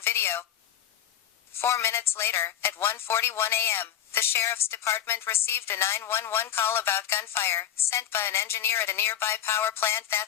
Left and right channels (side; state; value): right; quieter; 10.6 dB